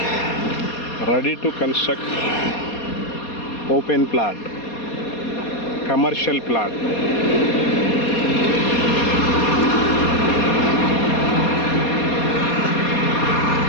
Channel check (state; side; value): late; right; 4.2 ms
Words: Ready to construct open plot, commercial plot.